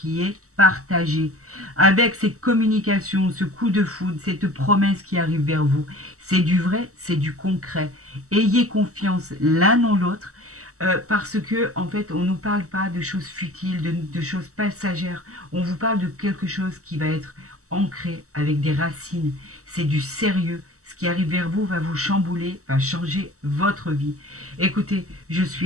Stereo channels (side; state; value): left; late; 0.65 ms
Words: est partagé. Avec cette communication, ce coup de foudre, cette promesse qui arrive vers vous, c'est du vrai, c'est du concret. Ayez confiance l'un en l'autre parce que en fait on ne nous parle pas de choses futiles, de choses passagères, on vous parle de quelque chose qui va être ancré avec des racines, c'est du sérieux, ce qui arrive vers vous va vous chambouler, va changer votre vie. Écoutez, je